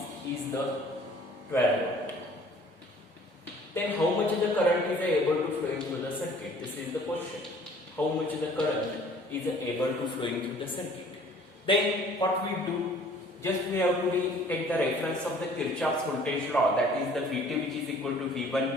is the 12 volt. Then how much the current is able to flow through the circuit? This is the question. How much the current is able to flow through the circuit? Then what we do, just we have to take the reference of the Kirchoffs voltage law, that is the Vt which is equal to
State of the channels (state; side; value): normal; both; correlation 0.53